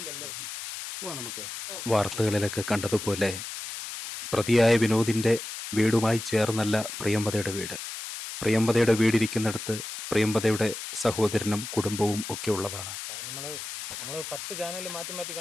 നമുക്ക് വാർത്തകളിലൊക്കെ കണ്ടതുപോലെ പ്രതിയായ വിനോദിൻ്റെ വീടുമായി ചേർന്നല്ല പ്രിയംവദയുടെ വീട്. പ്രിയംവദയുടെ വീടിരിക്കുന്നിടത്ത് പ്രിയംവദയുടെ സഹോദരനും കുടുംബവും ഒക്കെ ഉള്ളതാണ്. നമ്മൾ 10 ചാനൽ മാറ്റി മാറ്റി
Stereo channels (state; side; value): noise; left; hiss, 8 dB below the sound